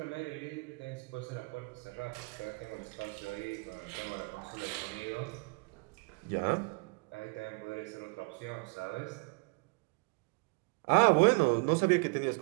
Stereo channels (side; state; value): left; quieter; 32.4 dB